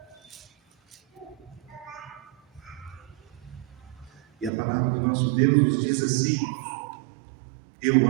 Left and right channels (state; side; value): drops out; left; at 4.5 s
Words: E a palavra do nosso Deus nos diz assim: eu